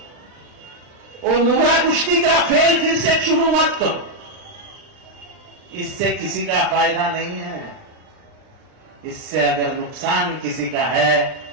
और मुंब्रा कुश्ती का खेल फिर से शुरू मत करो. इससे किसी का फायदा नहीं है. इससे अगर नुकसान किसी का है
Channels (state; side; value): late; left; 39 ms